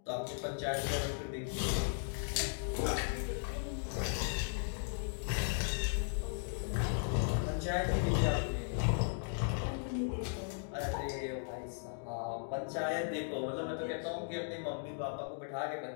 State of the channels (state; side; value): silent; right; digital silence